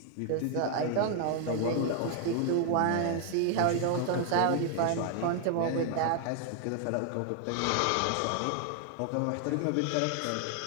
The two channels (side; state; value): both; different; correlation 0.00